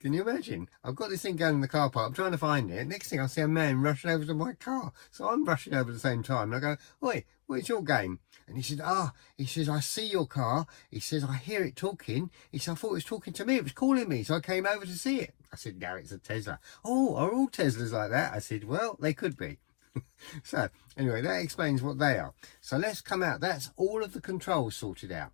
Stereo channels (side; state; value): right; quieter; 37.2 dB